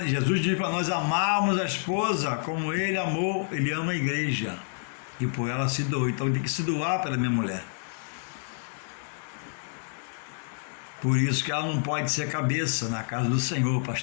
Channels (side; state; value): right; silent; digital silence